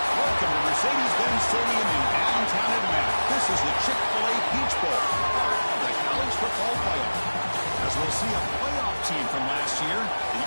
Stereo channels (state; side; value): inverted; both; correlation -1.00